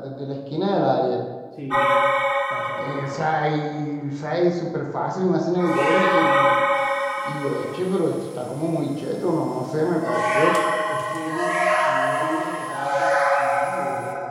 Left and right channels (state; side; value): identical; both; correlation 1.00